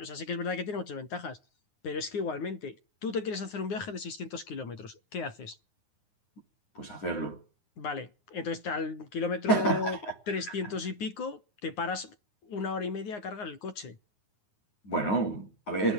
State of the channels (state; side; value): late; right; 9.6 ms